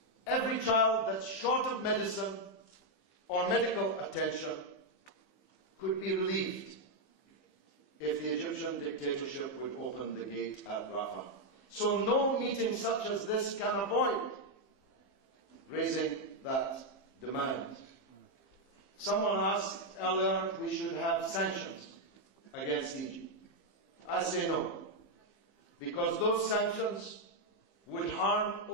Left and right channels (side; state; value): right; late; 15 ms